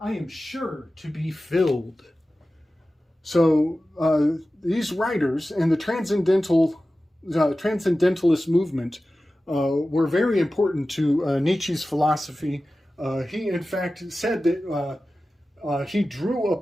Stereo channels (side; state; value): both; normal; correlation 0.95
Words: am sure to be filled. So these writers and the transcendentalist movement were very important to Nietzsche's philosophy. He, in fact, said that he drew